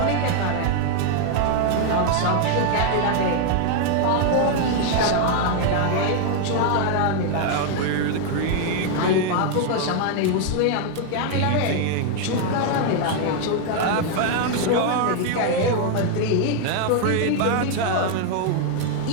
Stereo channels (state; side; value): different; both; correlation 0.00